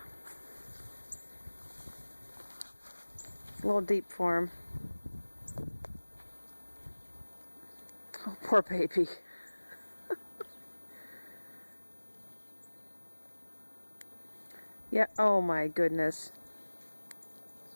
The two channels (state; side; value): inverted; both; correlation -1.00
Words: It's a little deep for him. Oh, poor baby. Yeah, oh my goodness.